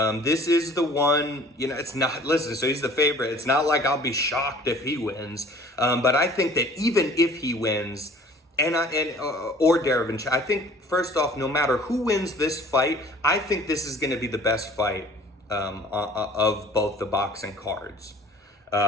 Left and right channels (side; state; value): both; normal; correlation 0.50